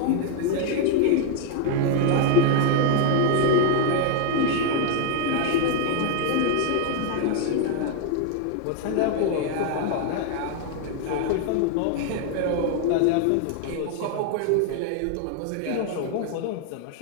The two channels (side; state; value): both; different; correlation 0.00